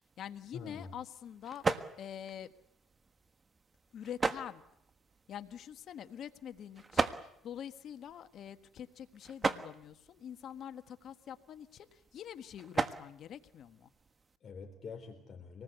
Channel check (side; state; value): both; normal; correlation 0.84